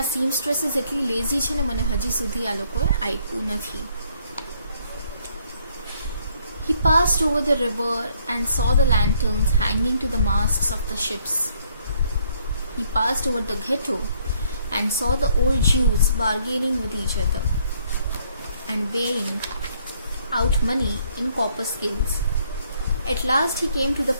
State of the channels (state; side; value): inverted; both; correlation -0.67